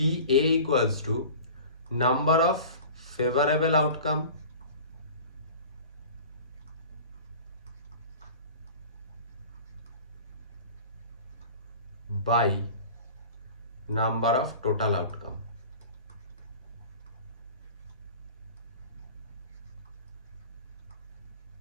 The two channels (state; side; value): inverted; both; correlation -0.40